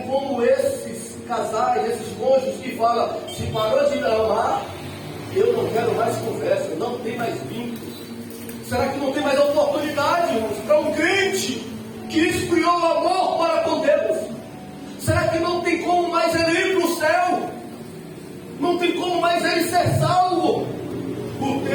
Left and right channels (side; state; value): both; identical; correlation 1.00